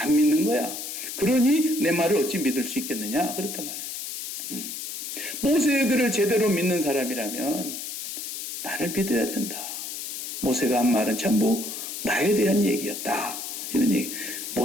믿는 거야. 그러니 내 말을 어찌 믿을 수 있겠느냐 그렇단 말이에요. 모세의 글을 제대로 믿는 사람이라면 나를 믿어야 된다. 모세가 한 말은 전부 나에 대한 얘기였다. 이런 얘기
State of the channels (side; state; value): left; noise; hiss, 7 dB below the sound